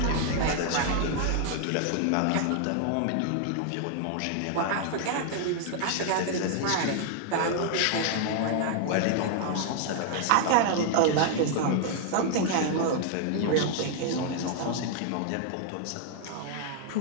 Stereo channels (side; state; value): both; different; correlation 0.00